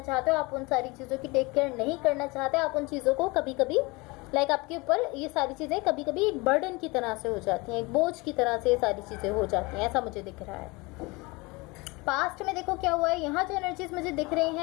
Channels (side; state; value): right; quieter; 25.1 dB